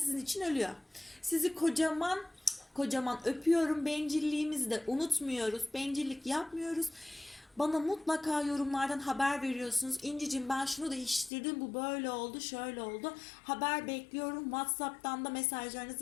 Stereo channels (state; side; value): drops out; right; at 11.3 s